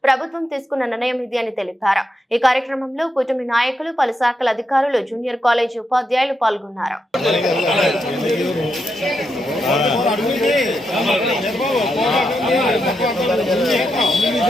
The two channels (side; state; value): both; normal; correlation 0.83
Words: ప్రభుత్వం తీసుకున్న నిర్ణయం ఇది అని తెలిపారు. ఈ కార్యక్రమంలో కూటమి నాయకులు, పలు శాఖల అధికారులు, జూనియర్ కాలేజీ ఉపాధ్యాయులు పాల్గొన్నారు.